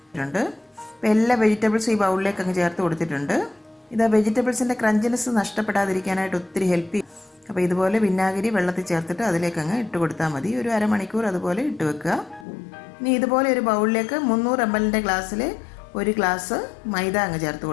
അപ്പോൾ എല്ലാ വെജിറ്റബിൾസും ഈ ബൗളിലേക്ക് അങ്ങ് ചേർത്ത് കൊടുത്തിട്ടുണ്ട്. ഇത് ആ വെജിറ്റബിൾസിൻ്റെ ക്രഞ്ചിനെസ് നഷ്ടപ്പെടാതിരിക്കാനായിട്ട് ഒത്തിരി ഹെൽപ്പ് ചെയ്യും. അപ്പോൾ ഇതുപോലെ വിനാഗിരി വെള്ളത്തിൽ ചേർത്തിട്ട് അതിലേക്ക് അങ്ങ് ഇട്ട് കൊടുത്താൽ മതി. ഒരു അരമണിക്കൂർ അതുപോലെ ഇട്ട് വെക്കുക. ഇനി ഇതുപോലെ ഒരു ബൗളിലേക്ക് 300 ml ഗ്ലാസ്സിൽ 1 ഗ്ലാസ് മൈദ അങ്ങ് ചേർത്ത്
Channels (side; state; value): right; drops out; at 12.5 s